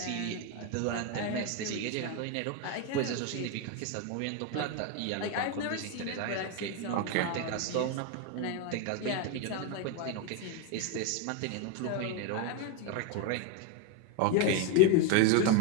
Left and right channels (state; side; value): different; both; correlation 0.02